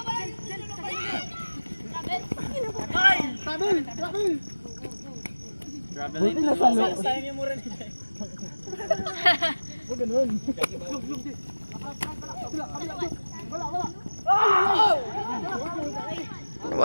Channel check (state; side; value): inverted; both; correlation -1.00